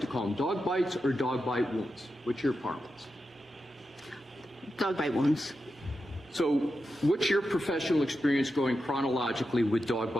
to call them? Dog bites or dog bite wounds? What's your parlance? Dog bite wounds. So what's your professional experience going chronologically with dog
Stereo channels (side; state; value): both; normal; correlation 0.89